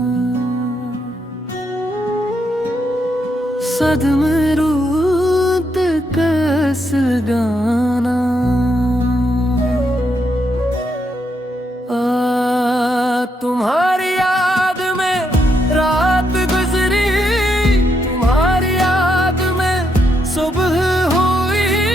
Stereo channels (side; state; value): both; normal; correlation 0.78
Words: सदमे रूत कस गाना तुम्हारी याद में रात गुजरी, तुम्हारी याद में सुबह हुई।